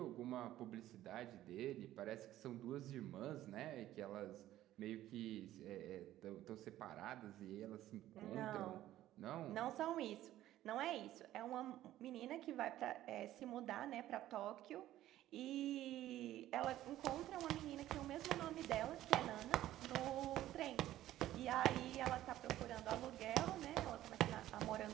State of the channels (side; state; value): left; quieter; 13.9 dB